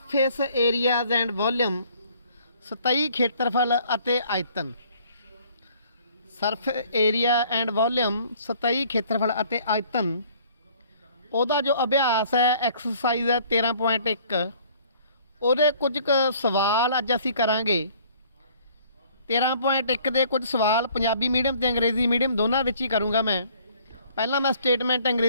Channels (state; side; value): inverted; both; correlation -0.57